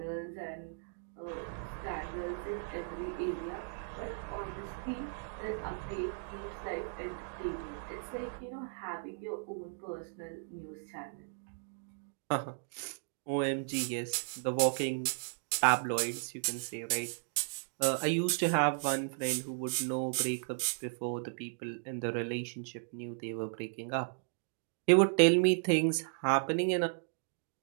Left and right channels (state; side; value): silent; left; digital silence